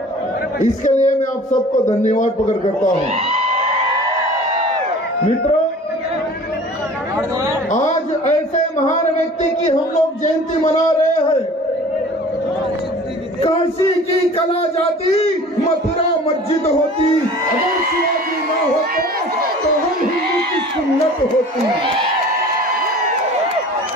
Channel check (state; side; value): normal; both; correlation 0.44